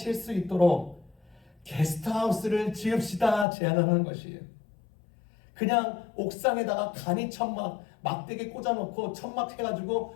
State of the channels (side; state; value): right; drops out; at 3.5 s